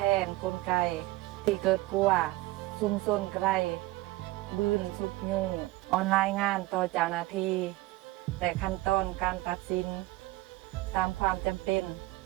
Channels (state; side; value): quieter; left; 19.2 dB